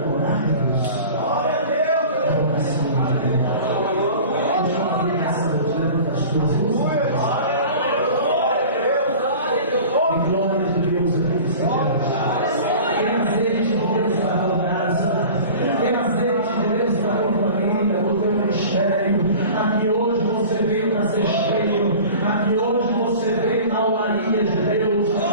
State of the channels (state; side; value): inverted; both; correlation -0.40